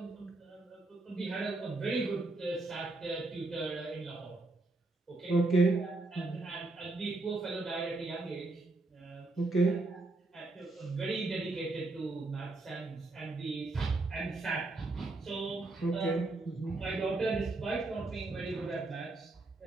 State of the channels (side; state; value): left; quieter; 3.1 dB